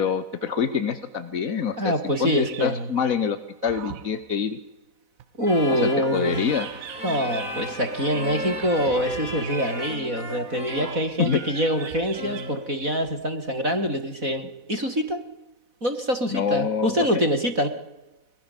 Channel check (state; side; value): late; left; 4.1 ms